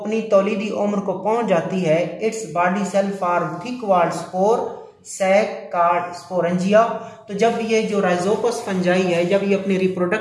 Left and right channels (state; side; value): identical; both; correlation 1.00